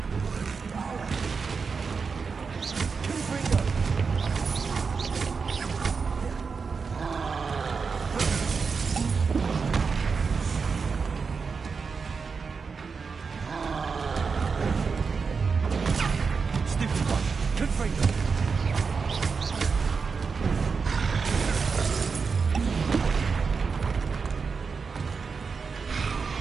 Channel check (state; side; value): quieter; left; 5.2 dB